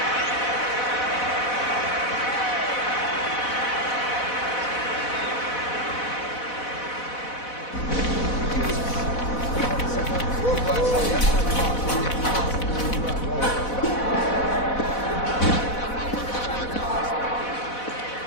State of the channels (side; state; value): right; late; 4.1 ms